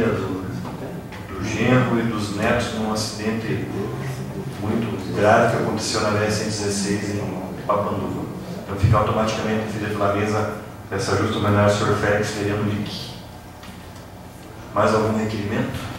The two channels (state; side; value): identical; both; correlation 1.00